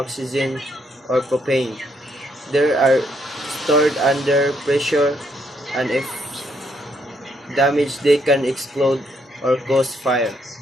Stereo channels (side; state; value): both; normal; correlation 0.73